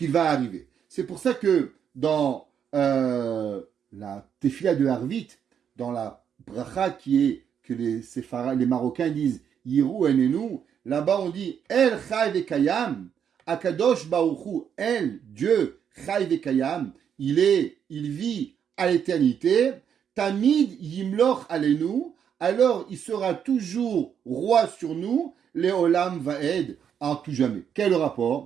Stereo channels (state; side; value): quieter; left; 8.1 dB